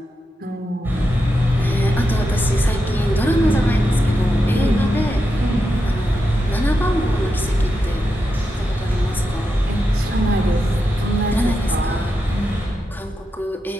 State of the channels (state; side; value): normal; both; correlation 0.87